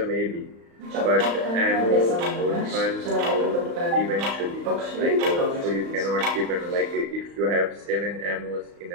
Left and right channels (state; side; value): late; left; 35 ms